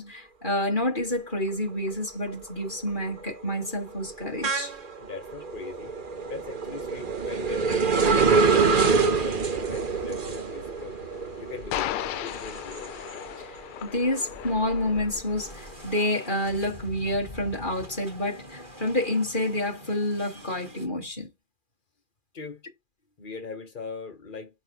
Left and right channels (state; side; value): late; right; 2.4 ms